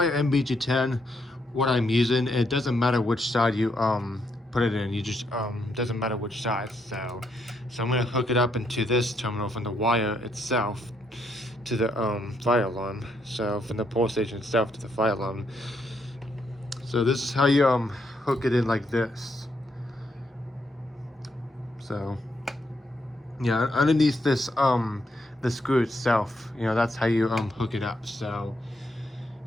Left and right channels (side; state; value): both; normal; correlation 0.77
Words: NBG10, what I'm using, it doesn't matter which side you put it in. You just doesn't matter which side. So I'm gonna hook it up into this terminal from the wire itself to the fire alarm. So from the pole station itself to the fire alarm. So this is how you hook it in, like this. So yeah, underneath this the screw itself, that's how you hook it up. So